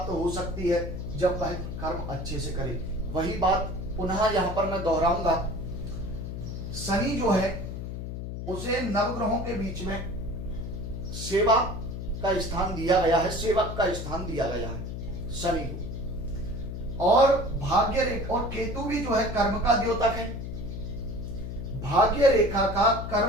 हो सकती है जब वह कर्म अच्छे से करे। वही बात पुनः यहां पर मैं दोहराऊंगा। शनि जो है उसे नवग्रहों के बीच में सेवा का स्थान दिया गया है, सेवक का स्थान दिया गया है शनि को। और भाग्य रेखा और केतु भी जो है कर्म का द्योतक है। भाग्य रेखा का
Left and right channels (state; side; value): noise; left; hum, 6 dB below the sound